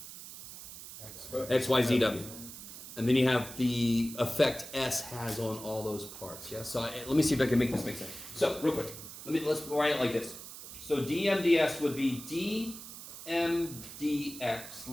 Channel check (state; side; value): noise; right; hiss, 13 dB below the sound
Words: X, Y, Z, W. And then you have the effect S has on all those parts. Yeah. So let me see if I can make this make sense. So real quick, let's write it like this. So dmds would be dmdx,